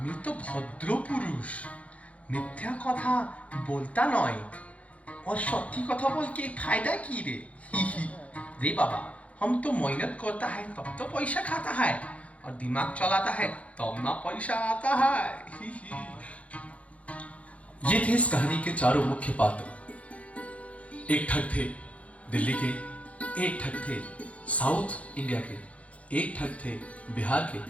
তো ভদ্র পুরুষ, মিথ্যা কথা বলতা নয়। और सत्य कथा बोल के फायदा की रे रे बाबा, हम तो मेहनत करता है तब तो पैसा खाता है, और दिमाग चलाता है तब ना पैसा आता है। ये थे इस कहानी के चारों मुख्य पात्र। एक ठग थे दिल्ली के, एक ठग थे साउथ इंडिया के, एक ठग थे बिहार के,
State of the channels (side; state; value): right; late; 0.065 ms